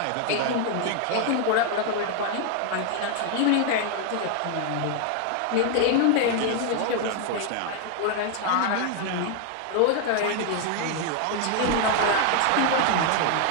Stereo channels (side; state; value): both; different; correlation 0.00